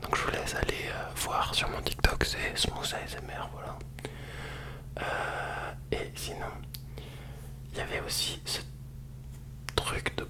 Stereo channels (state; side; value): identical; both; correlation 1.00